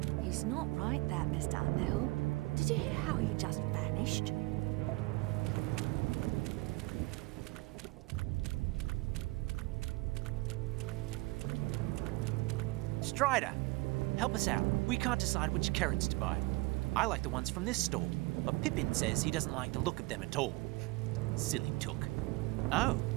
He's not right, that, Mr. Underhill. Did you hear how he just vanished? Strider, help us out. We can't decide which carrots to buy. I like the ones from this stall, but Pippin says he doesn't like the look of them at all. Silly took. Oh,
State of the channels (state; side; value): quieter; left; 23.4 dB